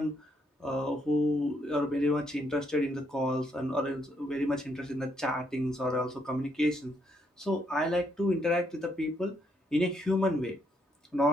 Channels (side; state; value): both; normal; correlation 0.74